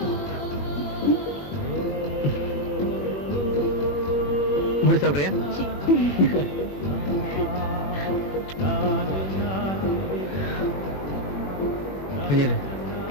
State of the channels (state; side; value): late; right; 21 ms